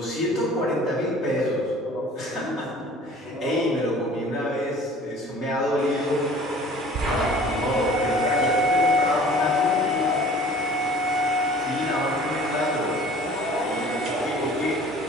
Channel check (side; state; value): both; normal; correlation 0.48